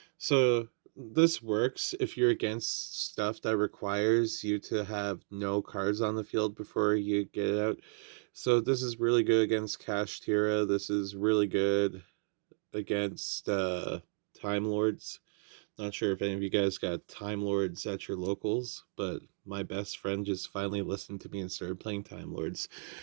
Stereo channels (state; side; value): silent; left; 55 dB below the other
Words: So this works if you're against stuff that requires you to have no cards on the field before you get it out. So this is really good against Kashtira. This is really good against Time Lords. Not sure if any of you guys got Time Lords at your locals, but my best friend just finally listened to me and started playing Time Lords.